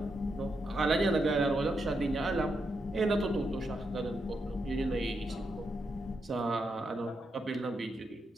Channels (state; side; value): normal; both; correlation 0.83